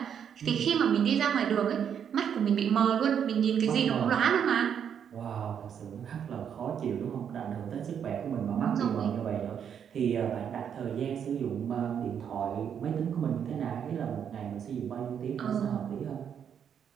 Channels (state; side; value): quieter; left; 8.2 dB